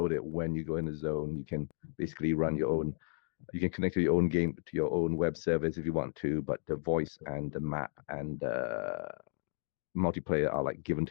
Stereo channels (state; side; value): silent; right; digital silence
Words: it when you go in a zone. You can basically run your own. You can connect to your own game to your own web service if you want to, but the voice and the map and multiplayer are like given